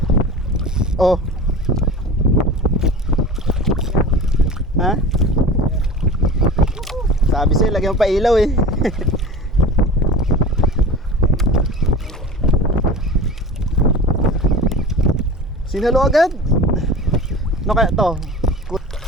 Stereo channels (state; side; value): normal; both; correlation 0.35